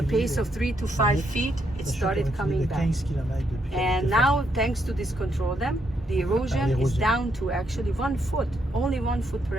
pace of 3 to 5 feet, it started coming back. And now, thanks to this control dam, the erosion is down to actually 1 foot, only 1 foot per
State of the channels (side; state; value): both; normal; correlation 0.77